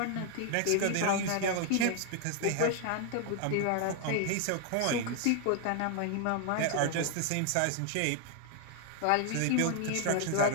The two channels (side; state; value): both; different; correlation 0.00